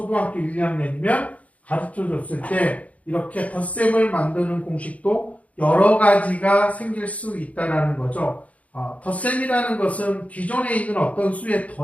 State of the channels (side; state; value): right; late; 0.068 ms